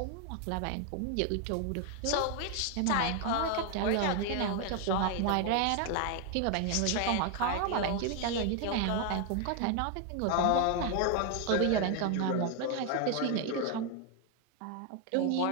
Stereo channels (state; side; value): different; both; correlation 0.01